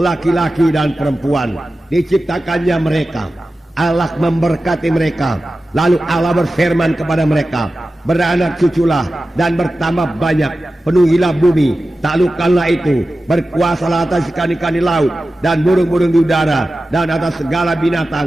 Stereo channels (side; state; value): both; normal; correlation 0.94